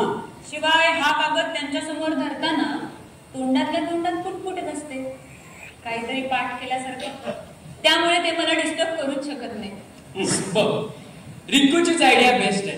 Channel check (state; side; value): identical; both; correlation 1.00